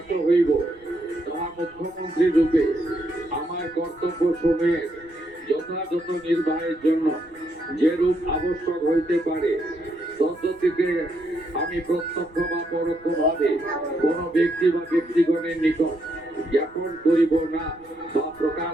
হইব, তাহা মুখ্যমন্ত্রী রূপে আমার কর্তব্য সমূহের যথাযথ নির্বাহের জন্য যেরূপ আবশ্যক হইতে পারে তদ্গতিকে আমি প্রত্যক্ষ বা পরোক্ষভাবে কোন ব্যক্তি বা ব্যক্তিগণের নিকট জ্ঞাপন করিব না বা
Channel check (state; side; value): noise; right; rumble, 29 dB below the sound